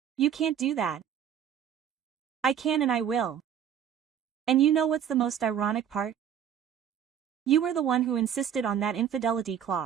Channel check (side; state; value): left; quieter; 9.0 dB